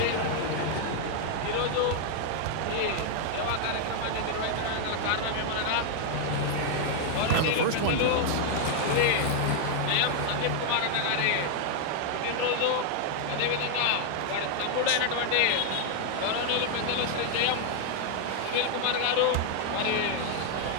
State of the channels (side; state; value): both; different; correlation 0.00